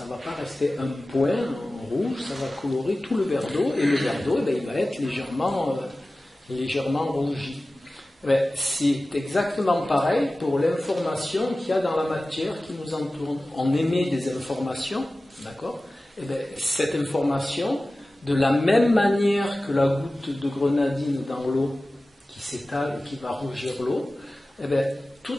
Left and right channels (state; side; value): normal; both; correlation 0.96